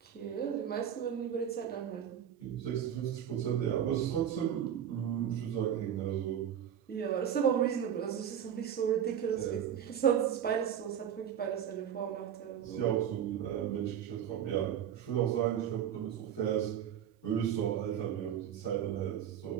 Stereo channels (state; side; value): quieter; left; 9.4 dB